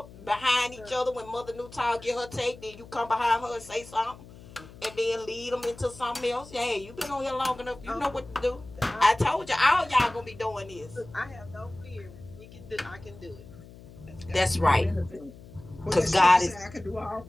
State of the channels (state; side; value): noise; left; hum, 19 dB below the sound